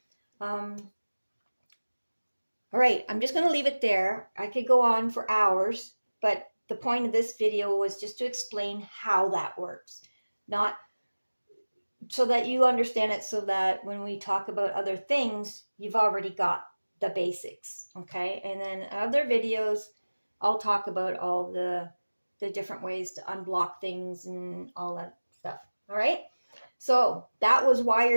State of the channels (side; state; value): both; inverted; correlation -1.00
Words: All right, I'm just going to leave it there. I could go on for hours, but the point of this video was just to explain how that works. Not so that you understand it, so that when we talk about other things, you've already got the basics, okay? And then other videos, I'll talk about all the different ways to unblock things and all that stuff, all right? So that was